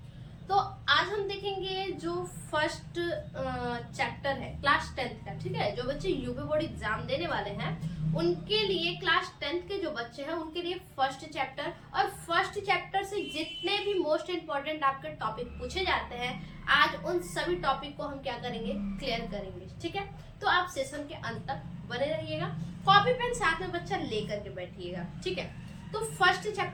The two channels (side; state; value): both; identical; correlation 1.00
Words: तो आज हम देखेंगे जो फर्स्ट चैप्टर है क्लास 10th का। ठीक है, जो बच्चे यूपी बोर्ड एग्जाम देने वाले हैं उनके लिए, क्लास 10th के जो बच्चे हैं उनके लिए फर्स्ट चैप्टर, और फर्स्ट चैप्टर से जितने भी मोस्ट इंपॉर्टेंट आपके टॉपिक पूछे जाते हैं आज उन सभी टॉपिक को हम क्या करेंगे, क्लियर करेंगे। ठीक है, तो आप सेशन के अंत तक बने रहिएगा, कॉपी पेन साथ में बच्चा लेकर के बैठिएगा। ठीक है, तो फर्स्ट